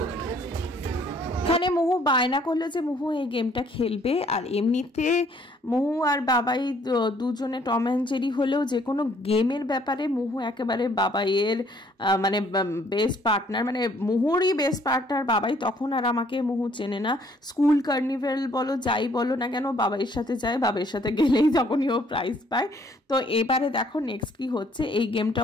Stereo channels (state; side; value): normal; both; correlation 0.63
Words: এখানে মোহু বায়না করলো যে মোহু এই গেমটা খেলবে। আর এমনিতে মোহু আর বাবাই দুজনে টম অ্যান্ড জেরি হলেও যে কোনো গেমের ব্যাপারে মোহু একেবারে বাবাইয়ের মানে বেস্ট পার্টনার, মানে মোহুরই বেস্ট পার্টনার বাবাই। তখন আর আমাকে মোহু চেনে না, স্কুল কার্নিভেল বলো যাই বলো না কেন বাবাইয়ের সাথে যায়, বাবাইয়ের সাথে গেলেই তখনই ও প্রাইজ পায়। তো এবারে দেখো নেক্সট কি হচ্ছে, এই